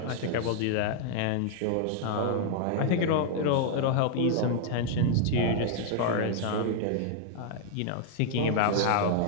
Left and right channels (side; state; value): both; different; correlation 0.00